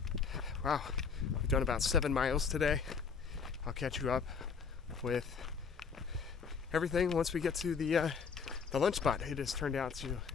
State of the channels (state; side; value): quieter; right; 5.7 dB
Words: Wow, we've done about 7 miles today. I'll catch you up with everything once we get to the lunch spot. It has turned out to